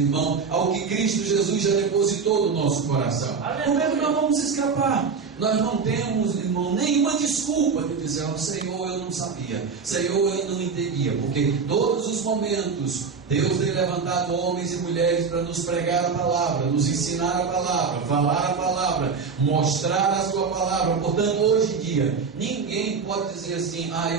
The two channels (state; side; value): quieter; left; 5.3 dB